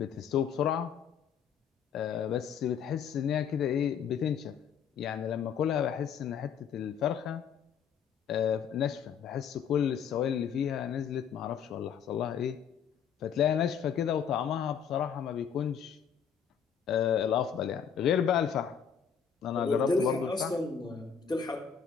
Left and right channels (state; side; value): quieter; right; 7.6 dB